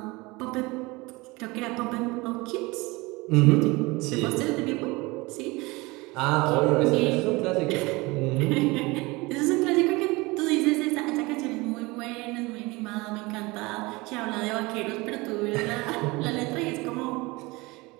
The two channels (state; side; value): quieter; left; 23.5 dB